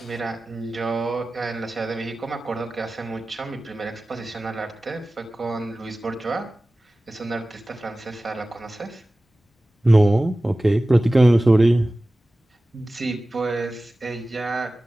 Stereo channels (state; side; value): normal; both; correlation 0.97